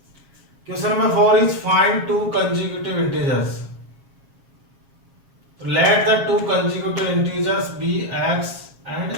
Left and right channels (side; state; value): left; late; 7.3 ms